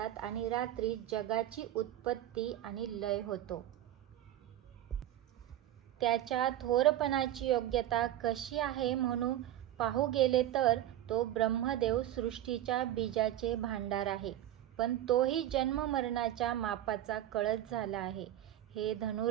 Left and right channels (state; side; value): quieter; left; 12.7 dB